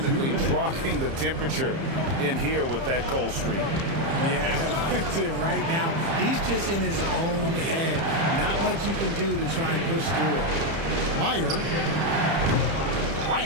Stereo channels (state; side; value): late; left; 30 ms